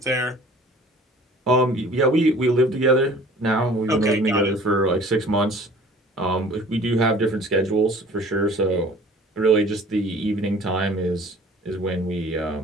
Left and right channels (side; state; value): both; normal; correlation 0.48